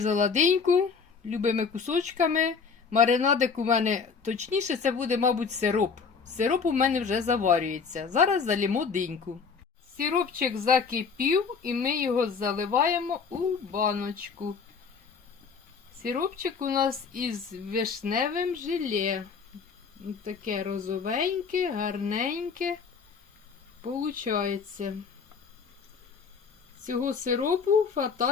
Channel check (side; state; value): right; quieter; 5.5 dB